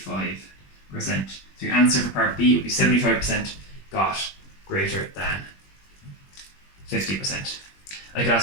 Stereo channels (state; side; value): late; right; 21 ms